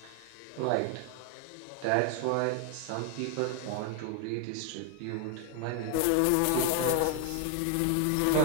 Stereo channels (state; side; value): different; both; correlation -0.01